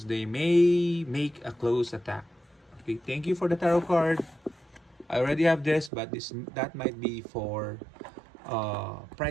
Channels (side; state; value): left; drops out; at 5.9 s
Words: they may make a close attack. Okay, thank you for the tarot card. I already have this, but that might be for